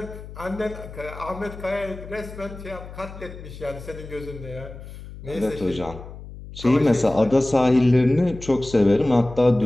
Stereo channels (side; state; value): left; noise; hum, 14 dB below the sound